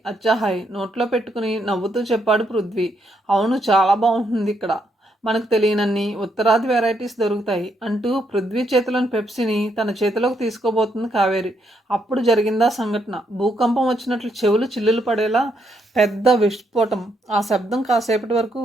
అచ్చాహాయ్ నోట్లో పెట్టుకుని నవ్వుతూ చెప్పాడు పృథ్వీ. అవును, చాలా బాగుంటుంది ఇక్కడ. మనకు తెలియనన్ని ఉత్తరాది వెరైటీస్ దొరుకుతాయి అంటూ పృథ్వీ చేతిలోని పెప్సీని తన చేతిలోకి తీసుకోబోతుంది కావేరి. అప్పుడు జరిగిందా సంఘటన. భూకంపం వచ్చినట్లు చెవులు చిల్లులు పడేలా పెద్ద విస్ఫోటం. ఆ శబ్దం కాసేపటి వరకు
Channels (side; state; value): both; normal; correlation 0.76